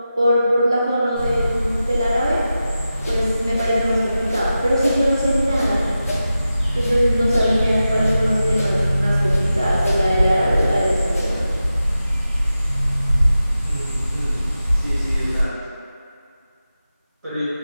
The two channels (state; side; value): inverted; both; correlation -0.92